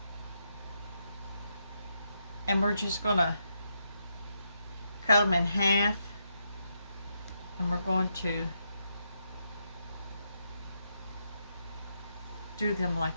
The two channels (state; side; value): inverted; both; correlation -0.81